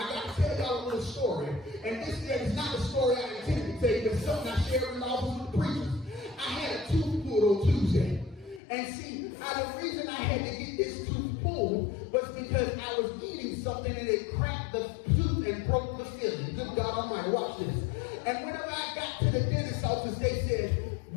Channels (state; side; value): drops out; right; at 8.6 s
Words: to tell y'all a little story. And this is not a story I intended to tell you, but something I shared in the office with the preachers. I had a tooth pulled on Tuesday. And see, the reason I had to get this tooth pulled was because I was eating something and it cracked the tooth and broke the filling. Good God Almighty, watch this. And whenever I got to the dentist's office, they said,